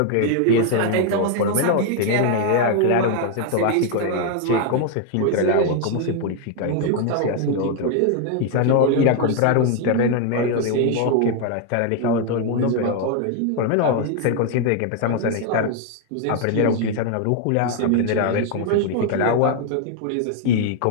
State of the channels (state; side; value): different; both; correlation 0.00